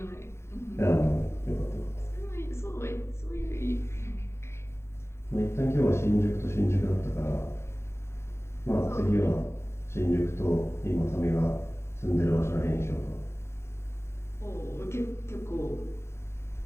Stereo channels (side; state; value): right; late; 0.13 ms